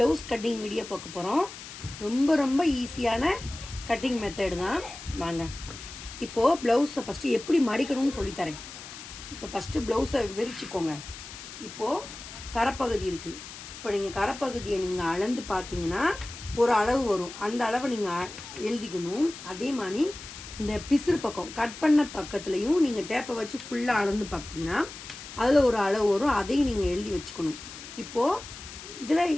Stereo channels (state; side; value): noise; left; hiss, 13 dB below the sound